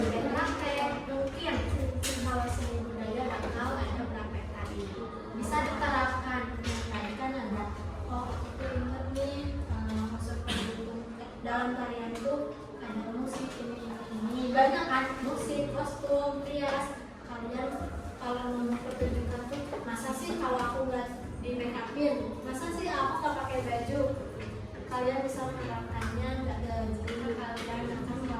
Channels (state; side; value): identical; both; correlation 1.00